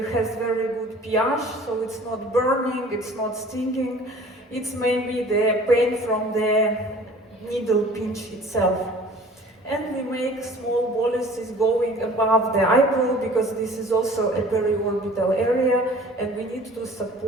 very good pH, so it's not burning, it's not stinging. It's maybe the pain from the needle pinch itself. And we make small boluses going above the eyebrow, because this is also a periorbital area, and we need to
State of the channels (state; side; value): normal; both; correlation 0.48